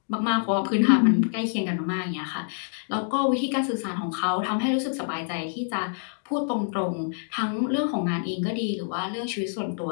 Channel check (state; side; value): silent; right; digital silence